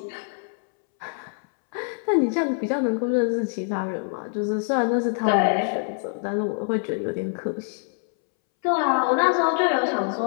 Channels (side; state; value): right; silent; 62 dB below the other